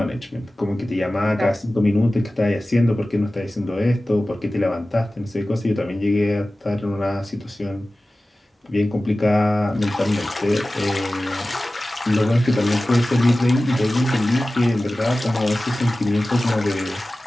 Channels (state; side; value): normal; both; correlation 0.96